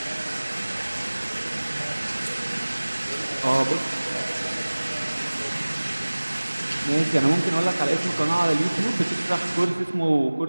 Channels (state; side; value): inverted; both; correlation -1.00